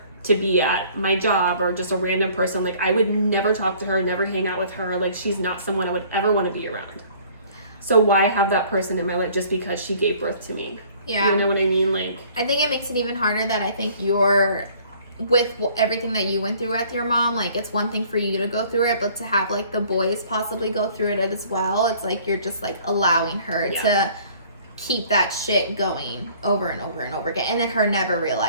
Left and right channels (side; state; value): both; inverted; correlation -0.55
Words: to be at my job or just a random person, I would never talk to her, never hang out with her. She's not someone I would ever want to be around. So why have that person in my life just because she gave birth to me? You know what I mean? I think it makes it even harder that I think with everything that you went through with your mom, it's one thing for you to go through it, but to have the boys possibly go through it as well, it's you're just allowing her to keep that shit going over and over and over again, and then her never